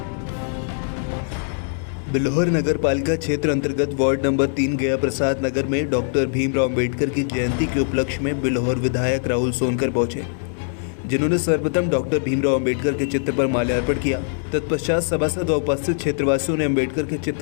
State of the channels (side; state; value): right; silent; digital silence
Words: बिल्हौर नगर पालिका क्षेत्र अंतर्गत वार्ड नंबर 3 गया प्रसाद नगर में डॉक्टर भीमराव अम्बेडकर की जयंती के उपलक्ष्य में बिल्हौर विधायक राहुल सोनकर पहुंचे, जिन्होंने सर्वप्रथम डॉक्टर भीमराव अम्बेडकर के चित्र पर माल्यार्पण किया। तत्पश्चात सभासद व उपस्थित क्षेत्रवासियों ने अम्बेडकर के